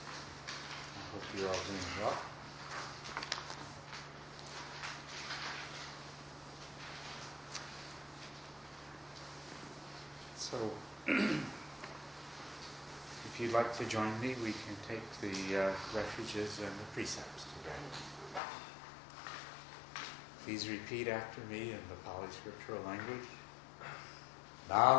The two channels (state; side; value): drops out; right; at 18.4 s